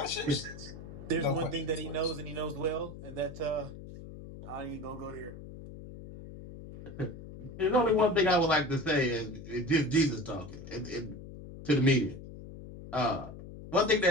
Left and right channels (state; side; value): noise; left; hum, 13 dB below the sound